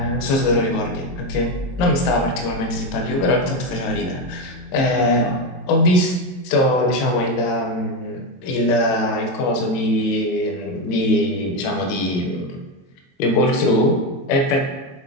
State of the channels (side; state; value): right; late; 22 ms